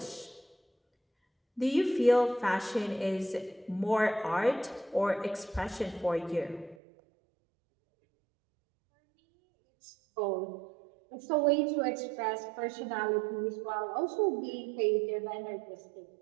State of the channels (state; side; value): drops out; left; at 6.8 s